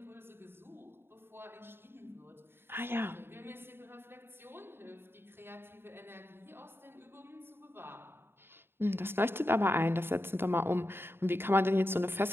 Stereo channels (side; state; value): left; late; 0.11 ms